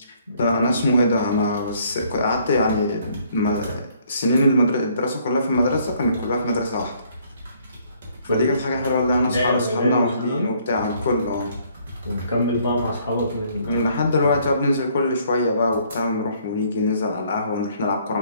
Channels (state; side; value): inverted; both; correlation -0.64